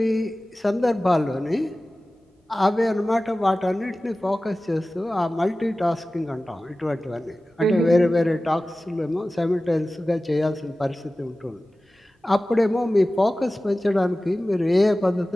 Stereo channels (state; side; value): normal; both; correlation 0.96